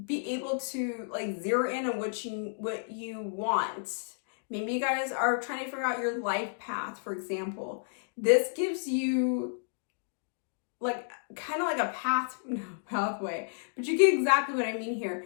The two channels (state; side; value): silent; right; digital silence